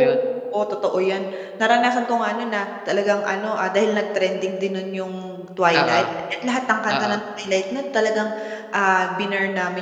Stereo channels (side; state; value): both; identical; correlation 1.00